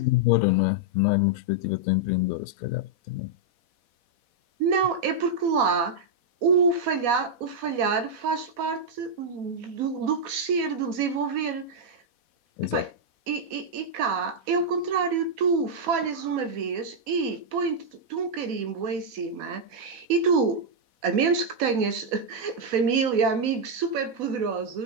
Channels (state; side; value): late; left; 4.1 ms